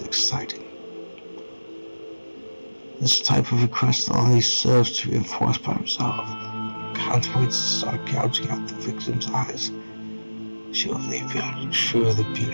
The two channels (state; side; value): inverted; both; correlation -1.00